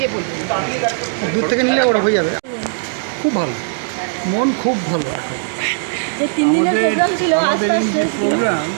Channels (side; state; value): left; silent; digital silence